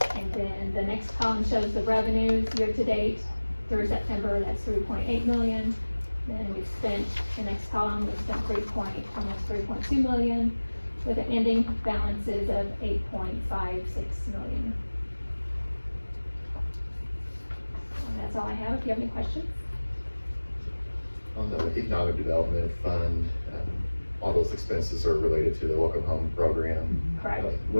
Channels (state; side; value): inverted; both; correlation -1.00